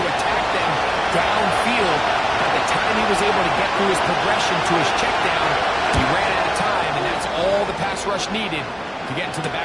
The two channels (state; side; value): identical; both; correlation 1.00